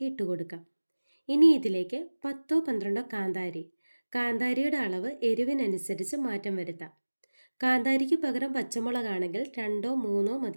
ഇട്ട് കൊടുക്കാം. ഇനി ഇതിലേക്ക് 10-12 കാന്താരിയുടെ അളവ് എരിവിനനുസരിച്ച് മാറ്റം വരുത്താം. കാന്താരിക്ക് പകരം പച്ചമുളകാണെങ്കിൽ 2-3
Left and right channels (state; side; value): inverted; both; correlation -1.00